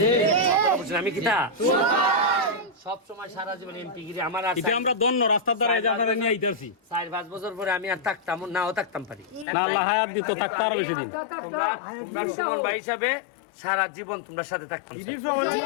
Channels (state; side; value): drops out; right; at 9.5 s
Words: আমি কিতা সব সময় সারা জীবন এমপি গিরি আমার আছে, এটা আমরা দন্ন রাস্তার দ্বারা এই জায়গাটা নিয়ে আইতাছি। 4-5 বছর পরে আমি আর থাকতাম নাও থাকতাম পারি না, আল্লাহ হায়াত দিত থাকতে আরো বেশি দিন। তোমরা সুমন ভাই হিসাবে সারা জীবন তোমরা সাথে থাকতাম।